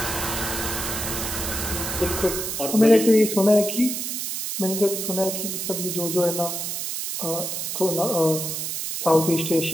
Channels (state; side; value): noise; right; hiss, 3 dB below the sound